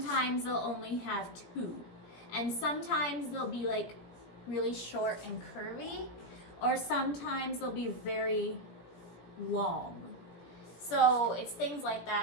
they'll only have 2. And sometimes they'll be like really short and curvy, or sometimes they'll be very long. So it's things like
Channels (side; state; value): right; late; 17 ms